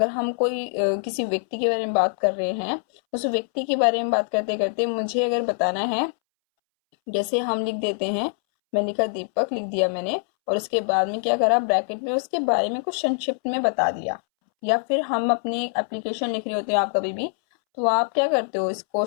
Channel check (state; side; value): silent; right; 63 dB below the other